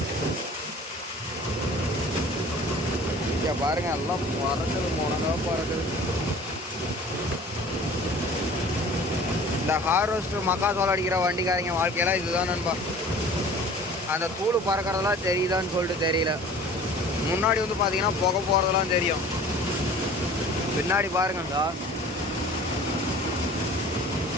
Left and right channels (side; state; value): both; normal; correlation 0.45